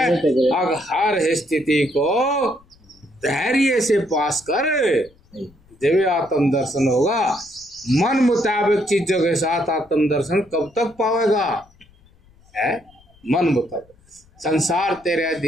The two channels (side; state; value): left; noise; rumble, 30 dB below the sound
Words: अब हर स्थिति को धैर्य से पास कर, जब आत्म दर्शन होगा। मन मुताबिक चीजों के साथ आत्म दर्शन कब तक पावेगा, है मन मुताबिक। संसार तेरे